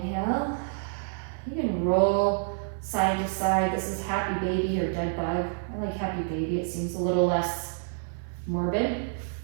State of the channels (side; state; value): left; silent; digital silence